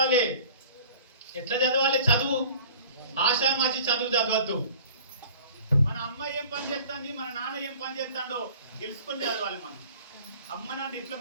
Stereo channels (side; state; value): both; inverted; correlation -0.46